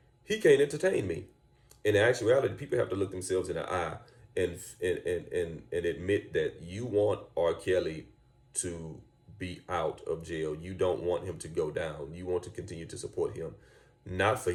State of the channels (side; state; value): both; identical; correlation 1.00